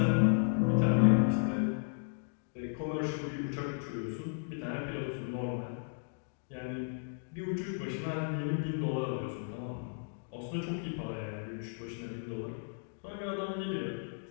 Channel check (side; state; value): right; silent; digital silence